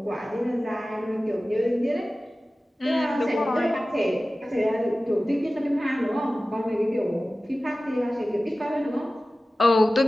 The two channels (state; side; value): normal; both; correlation 0.96